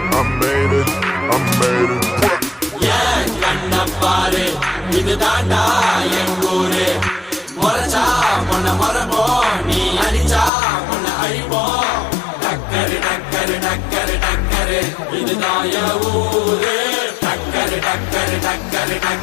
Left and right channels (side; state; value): right; drops out; at 10.5 s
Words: I made it, I made it. ஏன் கண்ண பாரு, இது தாண்டா என் ஊரு. முறைச்சா பொண்ண மரபோம், நீ அடிச்சா பொண்ண அழிப்போம். டக்கரு டக்கரு டக்கரு டக்கரு, இதுதான் என் ஊரு. டக்கரு டக்கரு டக்கரு